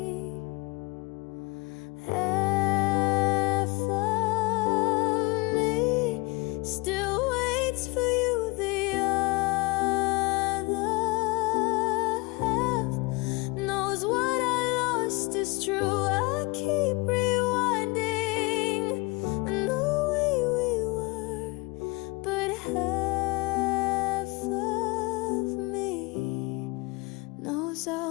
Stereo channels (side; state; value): right; quieter; 25.6 dB